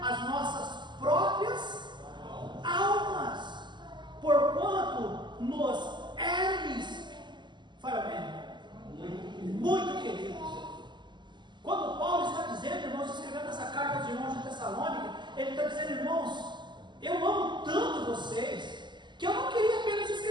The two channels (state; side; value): late; left; 0.22 ms